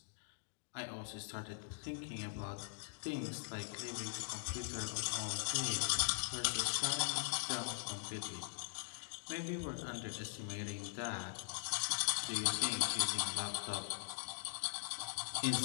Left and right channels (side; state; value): right; silent; digital silence